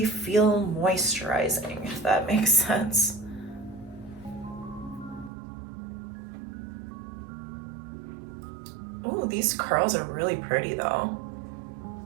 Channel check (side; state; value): left; drops out; at 5.3 s